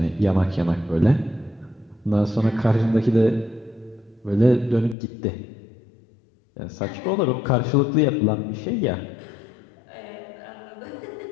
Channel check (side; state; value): right; drops out; at 5.0 s